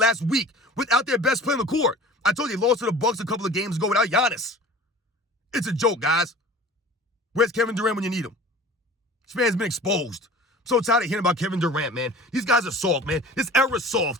week without their best player on the court. I told you they lost to the Bucks a couple of games ago without Giannis. It's a joke, guys. Where's Kevin Durant when you need him? This man's been exposed. I'm so tired of hearing about Kevin Durant, man. These guys are soft, man. This era's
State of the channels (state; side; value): normal; both; correlation 0.42